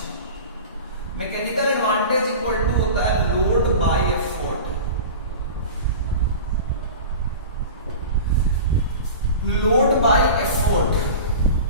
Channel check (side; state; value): both; inverted; correlation -0.34